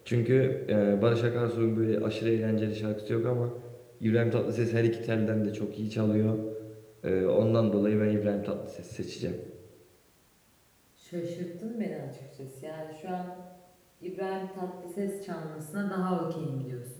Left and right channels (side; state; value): both; identical; correlation 1.00